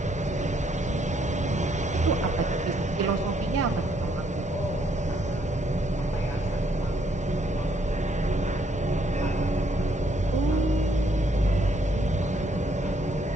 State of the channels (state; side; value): normal; both; correlation 0.70